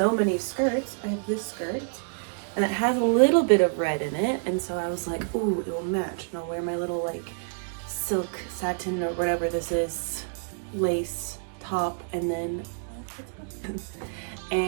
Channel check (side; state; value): left; silent; digital silence